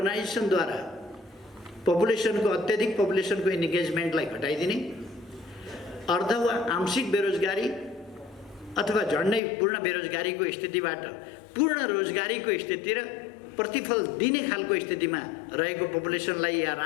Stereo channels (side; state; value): right; drops out; at 9.4 s